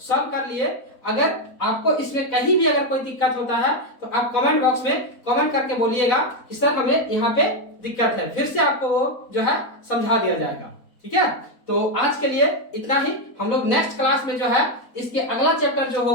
कर लिए। अगर आपको इसमें कहीं भी अगर कोई दिक्कत होता है तो आप कमेंट बॉक्स में कमेंट करके बोलिएगा कि सर हमें यहाँ पे दिक्कत है, फिर से आपको वो जो है समझा दिया जाएगा। ठीक है, तो आज के लिए इतना ही। हम लोग नेक्स्ट क्लास में जो है इसके अगला चैप्टर जो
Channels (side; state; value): right; late; 4.1 ms